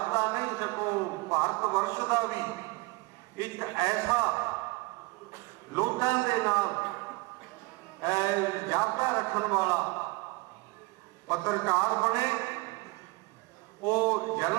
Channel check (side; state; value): left; quieter; 25.1 dB